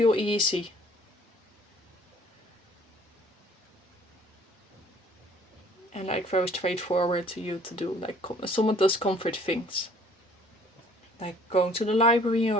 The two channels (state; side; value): normal; both; correlation 0.56